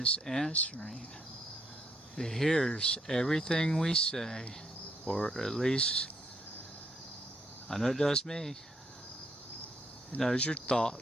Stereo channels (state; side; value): normal; both; correlation 0.73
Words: answering. It hears everything we say, or at least I know it does me. It knows your